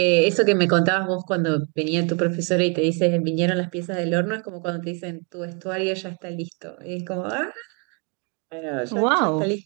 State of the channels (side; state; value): left; quieter; 31.4 dB